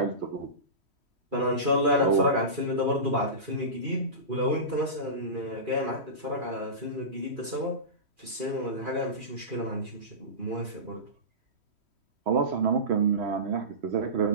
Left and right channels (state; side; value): late; left; 3.1 ms